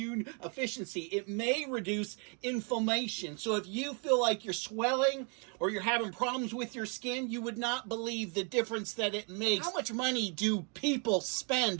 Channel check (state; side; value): quieter; left; 37.8 dB